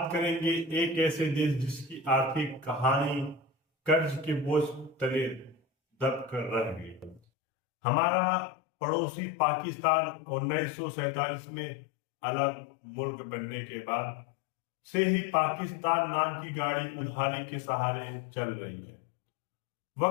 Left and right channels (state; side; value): drops out; right; at 7.2 s